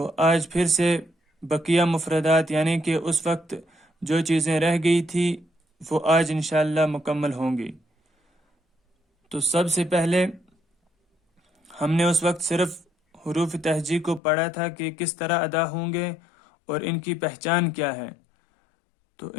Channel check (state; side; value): drops out; right; at 14.2 s